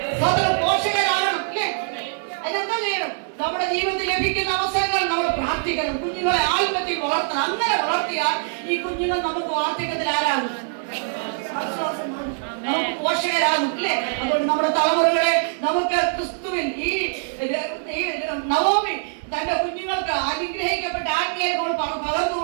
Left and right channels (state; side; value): silent; left; digital silence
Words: പോഷകരാകണം അല്ലേ? അതിനെന്താ ചെയ്യണം? നമ്മുടെ ജീവിതത്തിൽ ലഭിക്കുന്ന അവസരങ്ങൾ നമ്മൾ പ്രാർത്ഥിക്കണം. കുഞ്ഞുങ്ങളെ ആത്മത്തിൽ വളർത്തണം. അങ്ങനെ വളർത്തിയാൽ ഈ കുഞ്ഞുങ്ങൾ നമുക്ക് വാർദ്ധക്യത്തിൽ ആരാകും? നമുക്ക് പോഷകരാകും അല്ലേ? അതുകൊണ്ട് നമ്മുടെ തലമുറകളെ നമുക്ക് ക്രിസ്തുവിൽ ഈ നവോമി തന്റെ കുഞ്ഞുങ്ങൾക്ക് അനുഗ്രഹിക്കപ്പെട്ട ആത്മീയങ്ങൾ പകർന്നു